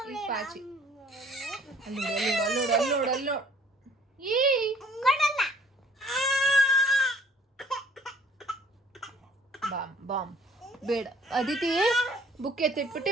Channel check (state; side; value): normal; both; correlation 0.56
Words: ಪಾಚಿ ಅಲ್ಲೋಡು. ಬಾಮ್ ಬೇಡ ಅದಿತಿ. ಬುಕ್ ಎತ್ತಿಟ್ಬಿಟ್ಟು